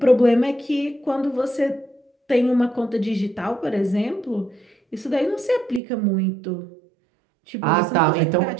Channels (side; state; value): left; drops out; at 5.8 s